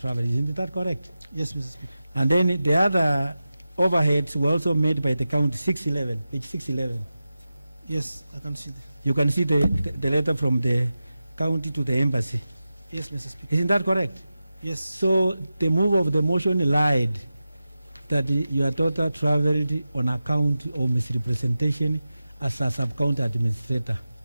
Isn't that correct? Yes, Mr. Speaker. And then the other overheads were also made by the county, 611, page 611. Yes, I can see that. You can see the letter from the county to the embassy. Yes, Mr. Speaker. Isn't that correct? Yes. So the move of the motion lied that your daughter traveled on account of misrepresentation as a sub-county administrator.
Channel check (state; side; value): inverted; both; correlation -0.93